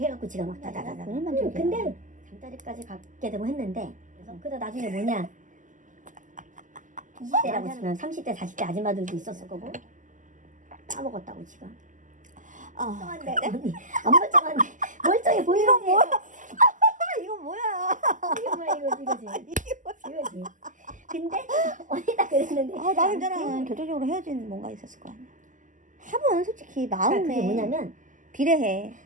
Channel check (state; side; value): late; left; 0.37 ms